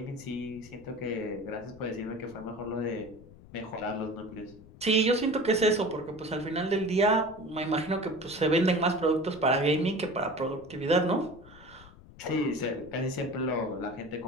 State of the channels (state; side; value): noise; left; rumble, 20 dB below the sound